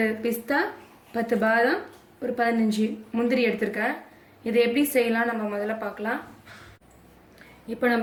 பிஸ்தா, 10 பாதாம், ஒரு 15 முந்திரி எடுத்திருக்கேன். இதை எப்படி செய்யலாம் நம்ம முதல்ல பார்க்கலாம். இப்போ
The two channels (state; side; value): identical; both; correlation 1.00